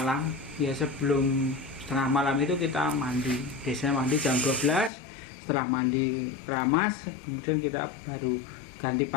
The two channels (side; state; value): right; drops out; at 4.9 s